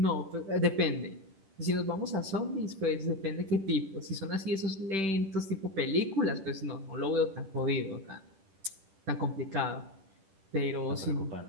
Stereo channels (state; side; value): late; left; 10 ms